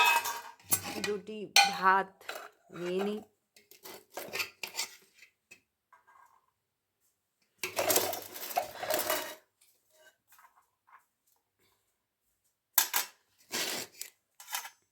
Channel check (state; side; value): identical; both; correlation 1.00